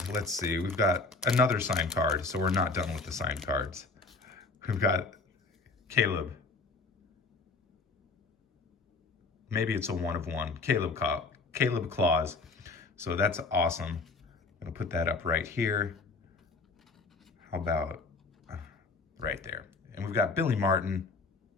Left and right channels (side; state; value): right; quieter; 3.9 dB